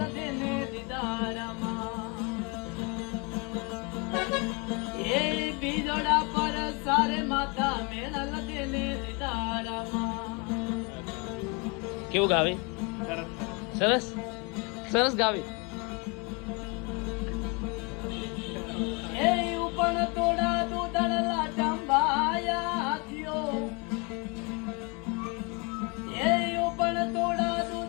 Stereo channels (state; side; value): quieter; right; 30.8 dB